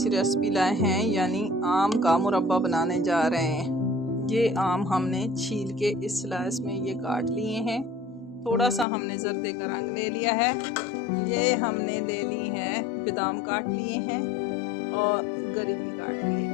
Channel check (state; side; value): drops out; right; at 8.8 s